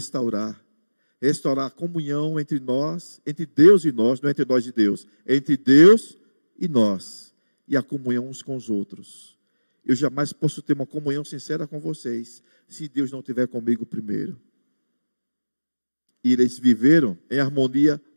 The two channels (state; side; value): inverted; both; correlation -1.00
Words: Restaurar a comunhão entre nós, entre Deus e nós, não é entre nós e Deus. É entre Deus e nós. E a comunhão uns com os outros. Eu jamais posso ter uma comunhão sincera com vocês, se Deus não estiver comigo primeiro. E eles viveram em harmonia